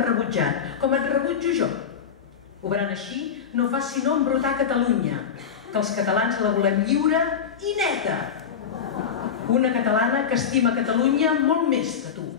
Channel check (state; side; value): quieter; right; 7.3 dB